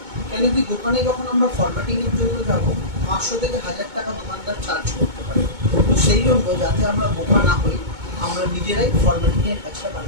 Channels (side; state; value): left; late; 2.2 ms